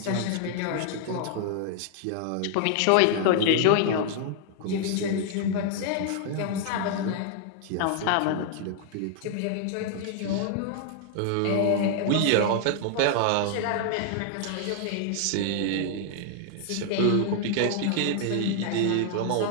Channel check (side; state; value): both; different; correlation 0.00